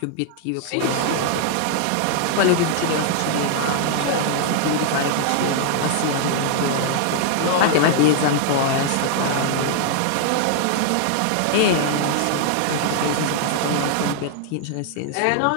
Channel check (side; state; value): both; different; correlation 0.00